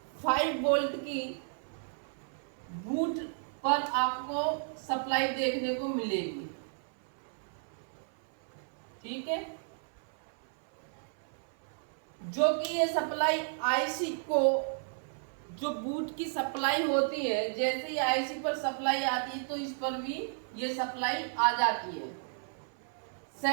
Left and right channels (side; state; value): left; silent; 56 dB below the other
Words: 5 वोल्ट की बूट पर आपको सप्लाई देखने को मिलेगी। ठीक है, जो कि ये सप्लाई IC को, जो बूट की सप्लाई होती है, जैसे ही IC पर सप्लाई आती है तो इस पर भी ये सप्लाई आ जाती है